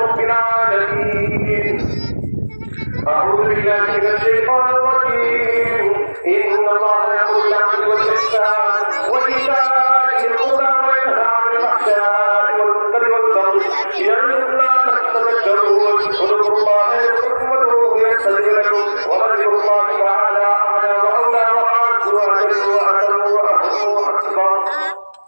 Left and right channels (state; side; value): inverted; both; correlation -1.00